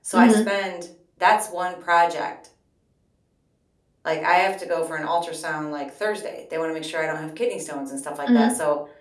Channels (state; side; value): identical; both; correlation 1.00